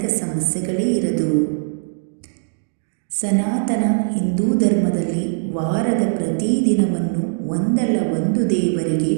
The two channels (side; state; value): left; silent; digital silence